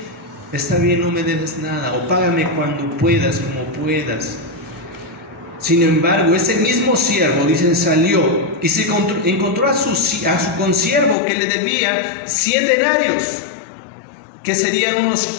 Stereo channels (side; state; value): right; drops out; at 11.2 s